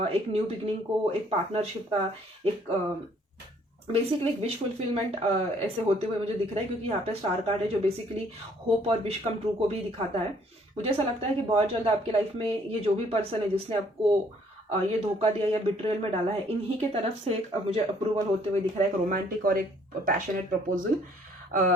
एक न्यू बिगनिंग को, एक पार्टनरशिप का, एक बेसिकली एक विश फुलफिलमेंट ऐसे होते हुए मुझे दिख रहा है। क्योंकि यहाँ पे स्टार कार्ड है जो बेसिकली होप और विश कम ट्रू को भी दिखाता है। मुझे ऐसा लगता है कि बहुत जल्द आपकी लाइफ में ये जो भी पर्सन है जिसने आपको ये धोखा दिया या बिट्रेयल में डाला है, इन्हीं के तरफ से एक मुझे अप्रूवल होते हुए दिख रहा है, एक रोमांटिक और एक passionate proposal.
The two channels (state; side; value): normal; both; correlation 0.62